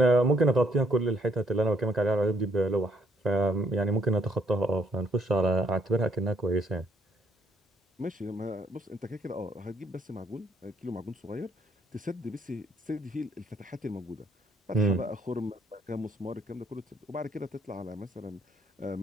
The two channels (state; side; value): normal; both; correlation 0.68